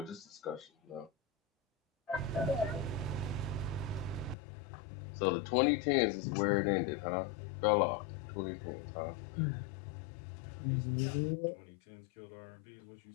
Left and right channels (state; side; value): drops out; right; at 4.4 s